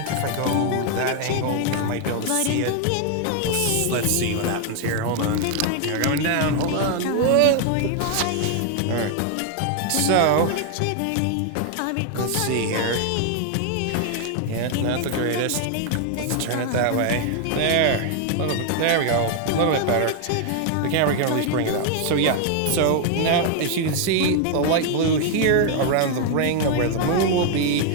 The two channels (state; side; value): different; both; correlation 0.00